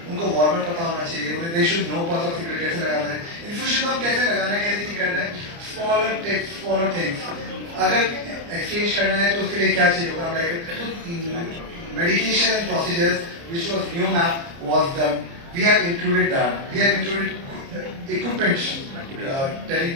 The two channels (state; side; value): late; left; 29 ms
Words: उनको warmer पता होना चाहिए, they should know pulse oximeter कैसे लगाना है, infusion pump कैसे लगाना है, कैसे नहीं करना है, smaller tips, smaller things. अगर exchange करना है तो उसके लिए क्या चाहिए होगा, like medication procedures, which was new map was done. We have included that. We have included equipment,